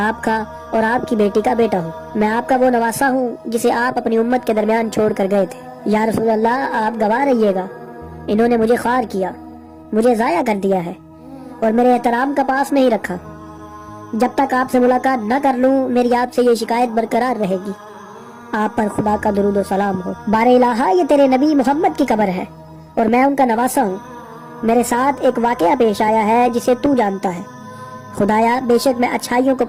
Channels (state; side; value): identical; both; correlation 1.00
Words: کا اور آپ کی بیٹی کا بیٹا ہوں، میں آپ کا وہ نواسا ہوں جسے آپ اپنی امت کے درمیان چھوڑ کر گئے تھے۔ یا رسول اللہ، آپ گواہ رہیے گا، انہوں نے مجھے خوار کیا، مجھے ضائع کر دیا ہے اور میرے احترام کا پاس نہیں رکھا۔ جب تک آپ سے ملاقات نہ کر لوں میری آپ سے یہ شکایت برقرار رہے گی۔ آپ پر خدا کا درود و سلام ہو۔ بار الہ، یہ تیرے نبی محمد کی قبر ہے اور میں ان کا نواسا ہوں۔ میرے ساتھ ایک واقعہ پیش آیا ہے جسے تو جانتا ہے۔ خدایا، بے شک میں اچھائیوں کو